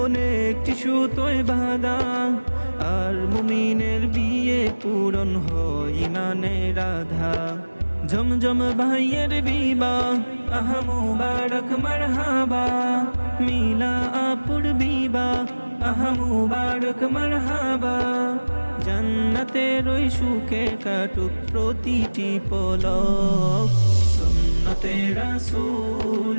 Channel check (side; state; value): both; inverted; correlation -1.00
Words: একটি সুতোয় বাঁধা, আর মুমিনের বিয়ে পূরণ হয় ইমানের আধার। জমজম ভাইয়ের বিবাহ আহা মুবারক মারহাবা, মিলা আপুর বিবাহ আহা মুবারক মারহাবা। জান্নাতের ওই সুখে কাটুক প্রতিটি পলক। সুন্নতে রাসূল